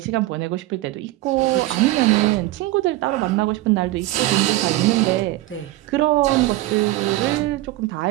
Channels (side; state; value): left; quieter; 17.6 dB